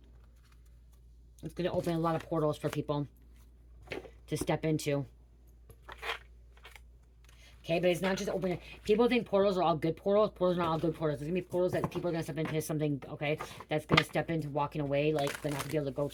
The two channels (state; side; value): identical; both; correlation 1.00